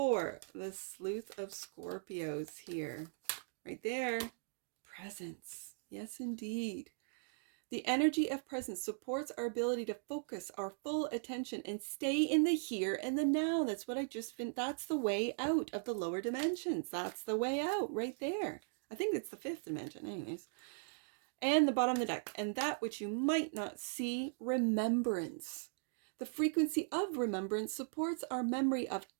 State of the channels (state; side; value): silent; left; digital silence